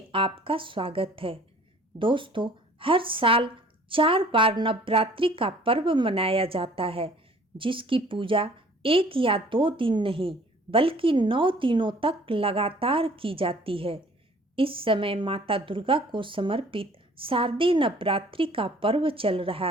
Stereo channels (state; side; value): normal; both; correlation 0.53